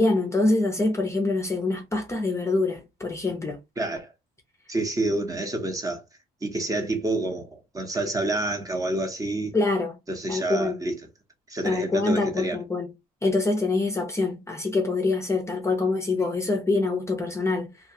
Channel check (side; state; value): both; normal; correlation 0.76